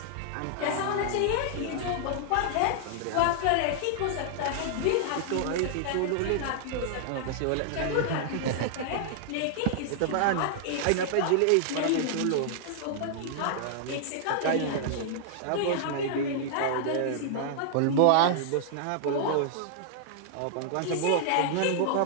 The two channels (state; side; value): different; both; correlation -0.01